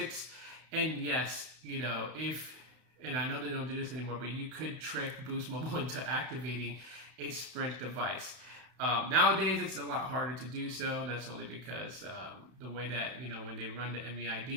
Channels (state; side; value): late; left; 32 ms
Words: And yes, you know, and I know they don't do this anymore, but you could trick Boost Mobile into activating a Sprint device. Nowadays, it's a lot harder to do so. And that's only because the way that, you know, when they run the